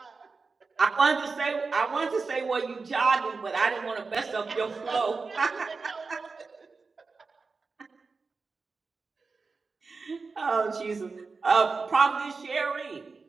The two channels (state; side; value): quieter; left; 4.4 dB